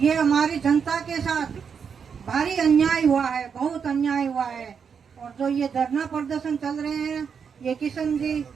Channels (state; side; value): quieter; left; 6.6 dB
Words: हमारी जनता के साथ भारी अन्याय हुआ है, बहुत अन्याय हुआ है। और जो ये धरना प्रदर्शन चल रहे हैं, ये किशन जी